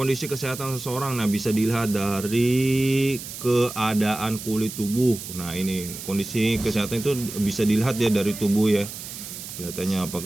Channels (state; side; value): noise; right; hiss, 10 dB below the sound